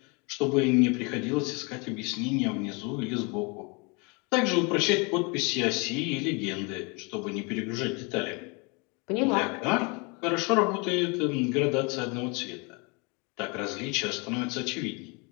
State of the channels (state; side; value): quieter; right; 30.7 dB